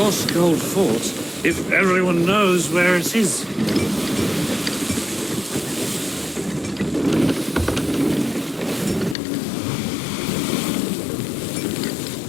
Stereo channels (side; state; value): right; drops out; at 9.2 s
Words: Gold Fort if everyone knows where it is?